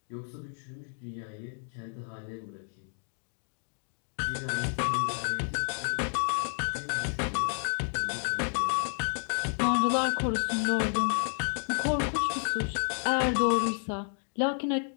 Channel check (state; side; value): silent; right; digital silence